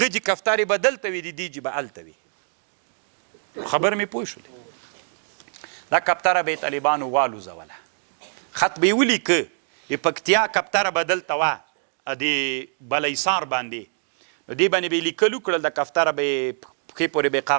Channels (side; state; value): left; silent; digital silence